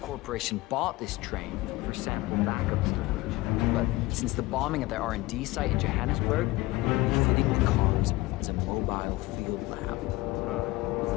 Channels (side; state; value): right; quieter; 19.6 dB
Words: Corporation bought this train for sample backup storage. But since the bombing of their R&D site in Johannesburg, we're fitting the comms as a mobile field lab.